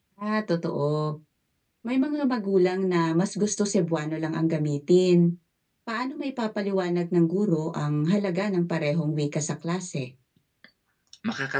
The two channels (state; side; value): identical; both; correlation 1.00